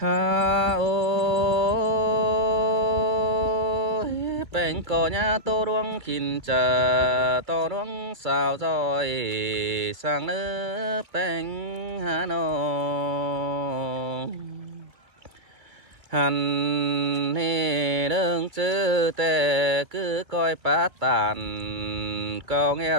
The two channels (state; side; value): late; left; 2.3 ms